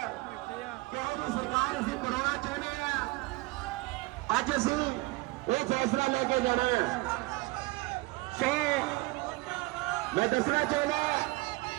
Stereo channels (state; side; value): quieter; left; 23.0 dB